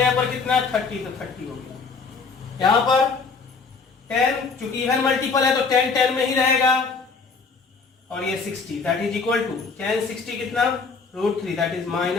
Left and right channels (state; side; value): quieter; right; 4.8 dB